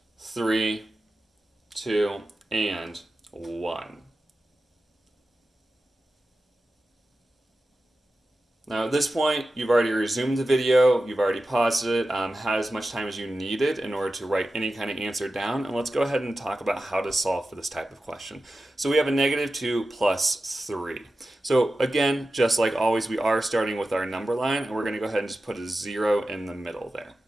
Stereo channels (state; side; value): normal; both; correlation 0.93